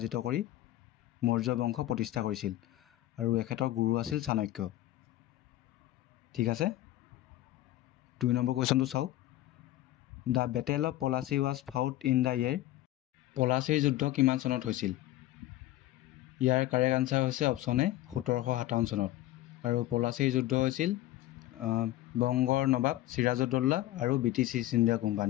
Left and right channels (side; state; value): right; quieter; 15.5 dB